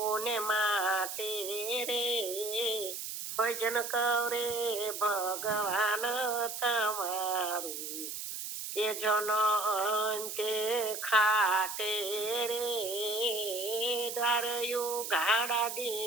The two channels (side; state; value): right; noise; hiss, 6 dB below the sound